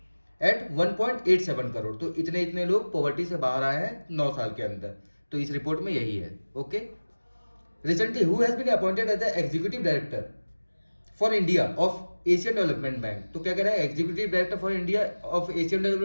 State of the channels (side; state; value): both; inverted; correlation -1.00